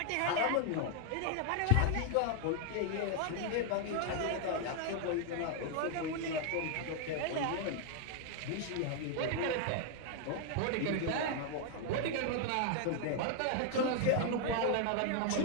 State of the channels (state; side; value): different; both; correlation 0.00